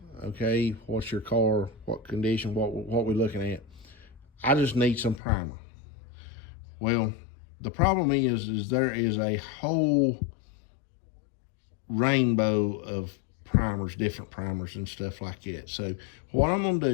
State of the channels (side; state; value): right; drops out; at 5.2 s